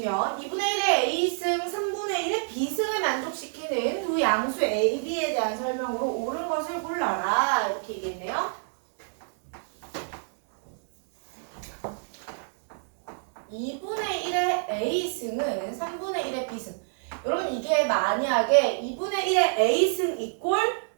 2분의 1의 A승, 3분의 1의 B승을 만족시키는 두 양수 A, B에 대한 설명으로 옳은 것을 골라라. 이렇게 얘기했네요. 2분의 1의 A승은 3분의 1의 B승. 여러분 이게 만약에 2분의 1의 A승 이꼴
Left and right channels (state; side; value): silent; left; digital silence